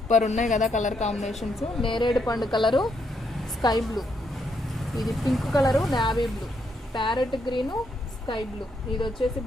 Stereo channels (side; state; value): both; normal; correlation 0.77